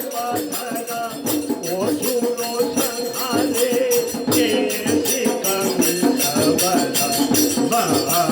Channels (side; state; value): both; identical; correlation 1.00